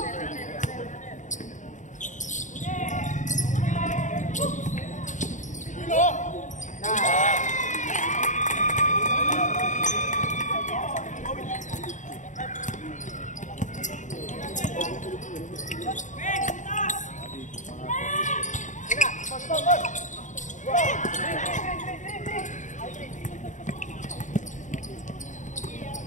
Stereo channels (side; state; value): right; late; 0.36 ms